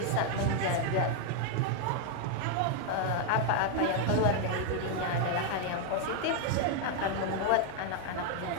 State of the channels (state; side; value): different; both; correlation 0.00